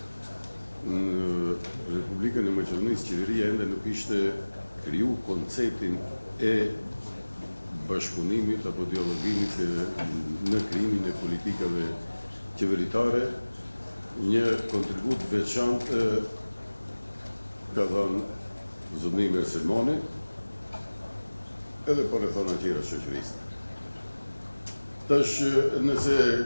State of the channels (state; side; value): inverted; both; correlation -1.00